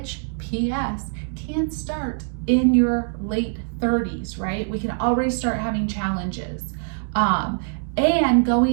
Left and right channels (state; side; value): silent; left; 63 dB below the other